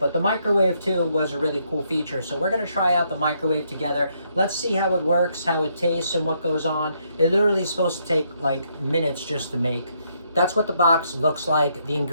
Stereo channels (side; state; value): both; inverted; correlation -0.74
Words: the microwave too was a really cool feature. So we're gonna try out the microwave together. Let's see how it works, how it tastes, and what goes on. It literally is supposed to take like minutes just to make. That's what the box looks like. The